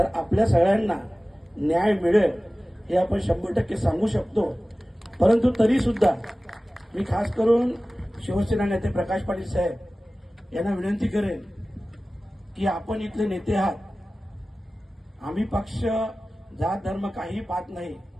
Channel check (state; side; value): normal; both; correlation 0.97